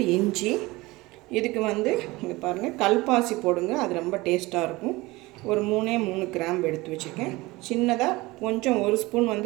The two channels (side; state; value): left; quieter; 21.2 dB